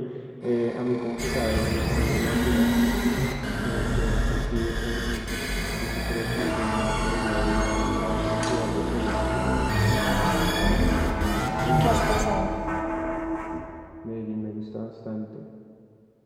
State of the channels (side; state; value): both; identical; correlation 1.00